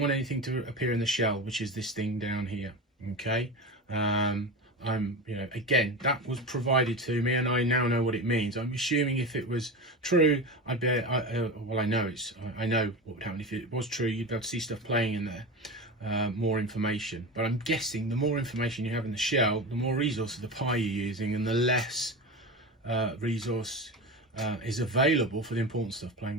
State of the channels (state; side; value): normal; both; correlation 0.24